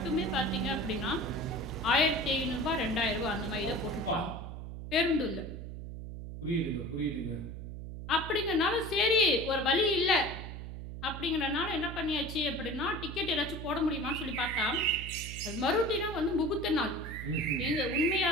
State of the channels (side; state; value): right; noise; hum, 9 dB below the sound